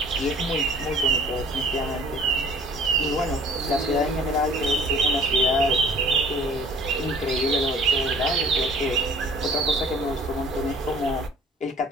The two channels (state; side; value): normal; both; correlation 0.51